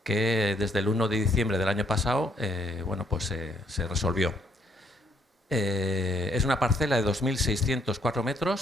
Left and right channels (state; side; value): normal; both; correlation 0.69